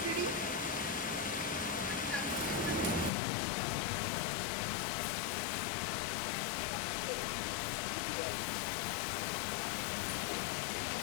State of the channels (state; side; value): drops out; right; at 3.1 s